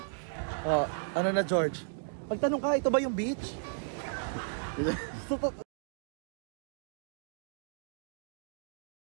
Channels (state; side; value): silent; left; digital silence